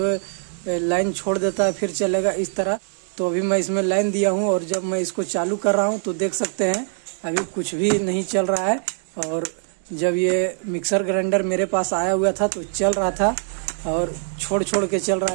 है लाइन छोड़ देता है, फिर चलेगा इस तरह। तो अभी मैं इसमें लाइन दिया हूँ और जब मैं इसको चालू कर रहा हूँ तो देख सकते हैं अभी कुछ भी नहीं चल रहा है। और जब ये मिक्सर ग्राइंडर मेरे पास आया हुआ था तो चल रहा था और छोड़ के चल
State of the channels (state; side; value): silent; left; digital silence